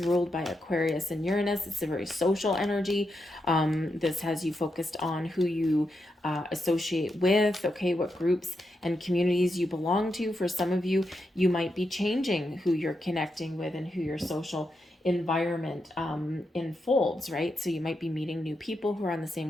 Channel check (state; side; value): normal; both; correlation 0.85